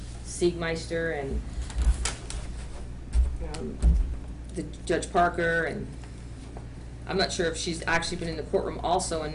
Siegmeister and the Judge Parker, and I'm not sure if she's actually been in the courtroom also and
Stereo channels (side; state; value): both; identical; correlation 1.00